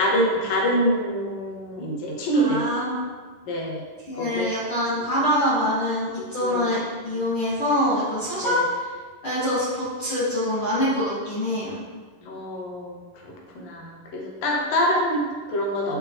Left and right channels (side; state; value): right; late; 10 ms